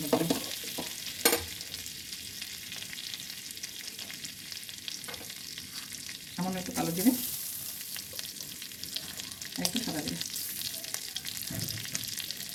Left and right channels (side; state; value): both; identical; correlation 1.00